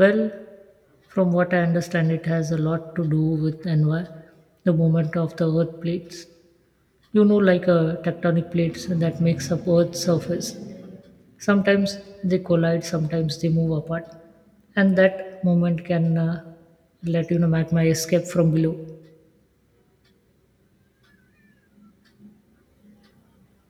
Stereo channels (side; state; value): both; identical; correlation 1.00